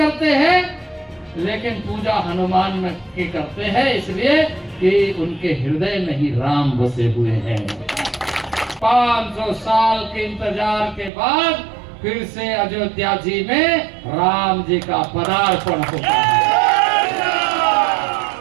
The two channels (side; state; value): left; drops out; at 11.1 s